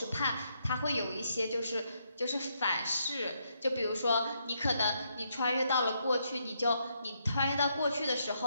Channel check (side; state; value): both; inverted; correlation -0.77